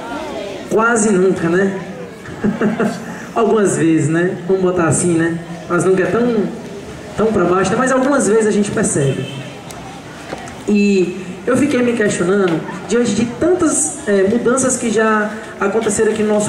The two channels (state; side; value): identical; both; correlation 1.00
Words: Quase nunca, né? Algumas vezes, né? Vamos botar assim, né? Mas nunca é tão para baixo, né? Mas algumas vezes a gente percebe. E eu fiquei me questionando diante de tantas mudanças que já aconteceram aqui no